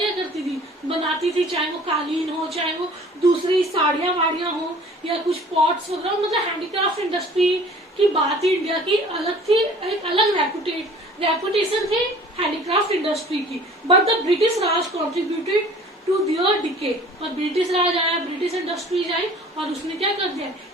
करती थी? बनाती थी, चाहे वो कालीन हो, चाहे वो दूसरी साड़ियां वाड़ियां हो या कुछ पॉट्स वगैरह. मतलब हैंडीक्राफ्ट इंडस्ट्री की बात ही इंडिया की अलग थी, एक अलग रेपुटेशन थी हैंडीक्राफ्ट इंडस्ट्री की. But the British Raj contributed to their decay. और ब्रिटिश राज आया, ब्रिटिश इंडस्ट्रीज आई और उसने क्या कर दिया?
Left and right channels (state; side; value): normal; both; correlation 0.49